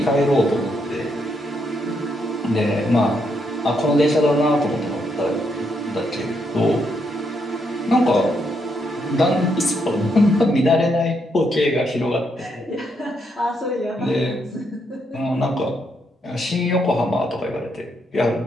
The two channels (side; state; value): both; normal; correlation 0.77